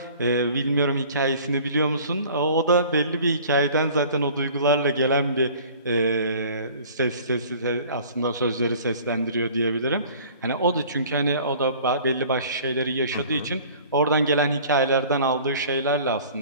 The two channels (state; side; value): inverted; both; correlation -0.48